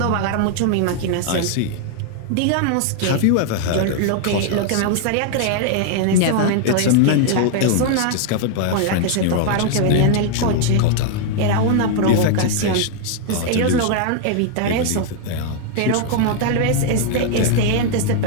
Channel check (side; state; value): both; different; correlation 0.00